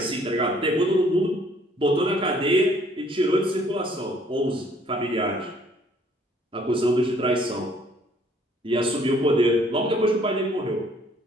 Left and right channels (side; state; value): both; normal; correlation 0.61